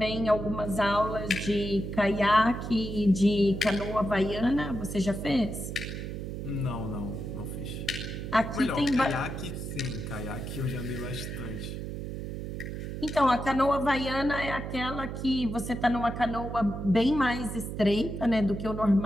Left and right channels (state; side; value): noise; right; hum, 6 dB below the sound